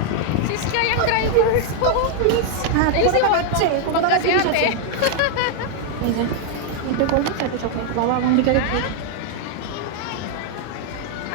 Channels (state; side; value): different; both; correlation 0.00